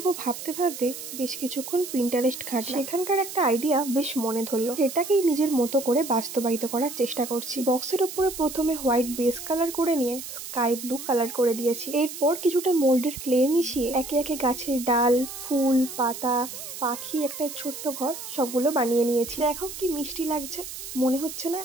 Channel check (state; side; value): noise; right; hiss, 10 dB below the sound